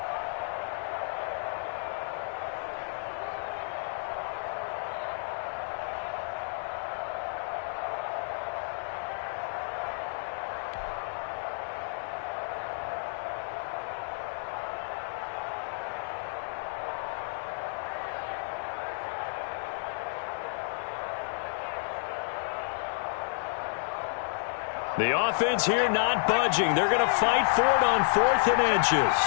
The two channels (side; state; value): right; silent; 57 dB below the other